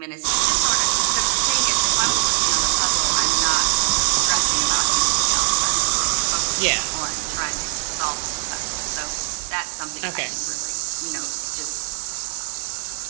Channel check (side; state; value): left; silent; digital silence